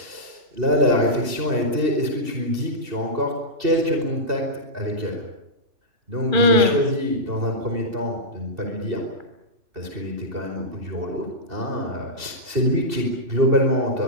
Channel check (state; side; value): late; left; 2.7 ms